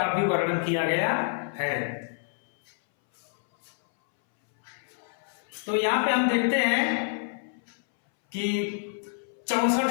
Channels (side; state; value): right; silent; 60 dB below the other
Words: भी वर्णन किया गया है। तो यहाँ पे हम देखते हैं कि 64